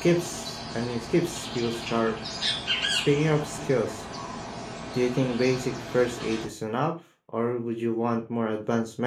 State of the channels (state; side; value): identical; both; correlation 1.00